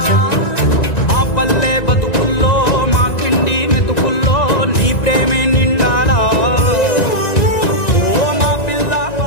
మా పల్లె బతుకుల్లో మా కిండి మెతుకుల్లో నీ ప్రేమే నిండి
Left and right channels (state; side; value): late; right; 1.9 ms